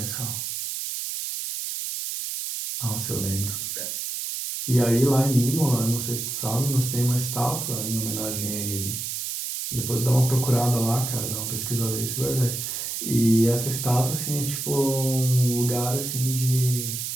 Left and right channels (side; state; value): right; noise; hiss, 4 dB below the sound